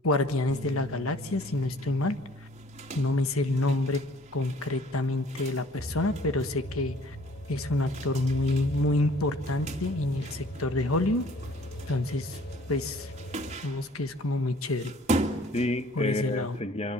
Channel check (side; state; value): both; normal; correlation 0.54